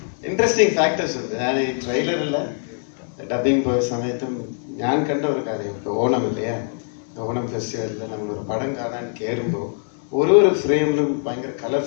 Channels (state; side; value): silent; right; 60 dB below the other